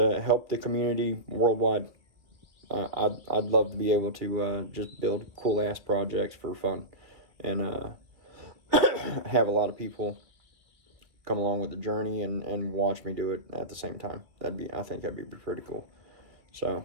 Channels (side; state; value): left; late; 2.1 ms